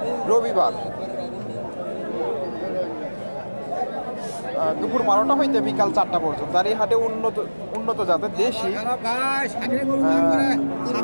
রবিবার দুপুর 12টা হইতে বিকাল 4টা পর্যন্ত। আর এই হাটে উন্নত জাতের দেশি 3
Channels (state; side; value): inverted; both; correlation -1.00